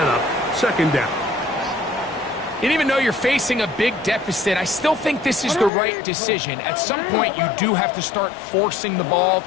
up 2nd down. And even though you're facing a big deficit, I still think this is the right decision. At some point, you do have to start forcing the ball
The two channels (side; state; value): right; drops out; at 5.7 s